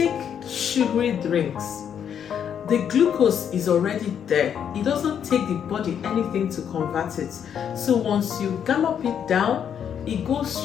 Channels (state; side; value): quieter; right; 8.4 dB